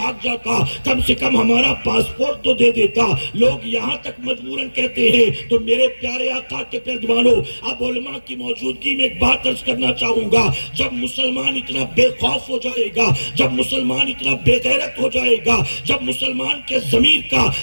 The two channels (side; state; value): both; inverted; correlation -1.00